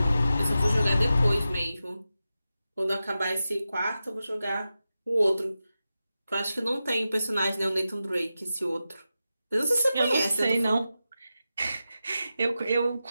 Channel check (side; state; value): both; inverted; correlation -0.92